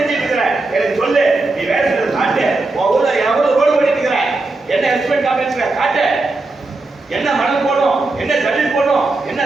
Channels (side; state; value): left; quieter; 3.3 dB